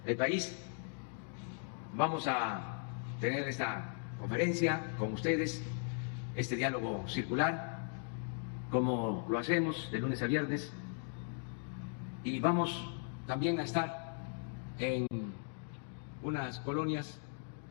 el país. Vamos a tener esta conferencia con ustedes, este diálogo circular, como lo hacemos de lunes a viernes, y vamos también a estar en unas colonias,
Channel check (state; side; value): silent; right; 52 dB below the other